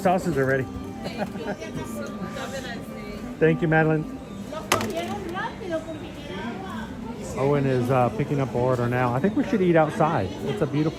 are ready. Thank you, Madeline. Owen is picking up our order now. I think we should eat outside. It's a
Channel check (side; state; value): both; identical; correlation 1.00